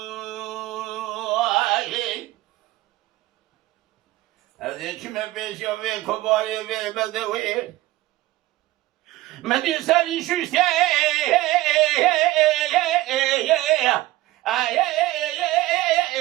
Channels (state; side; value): quieter; left; 17.5 dB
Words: هذه كم بيش يوي كباري وي بدوي مدي سالي شوشتي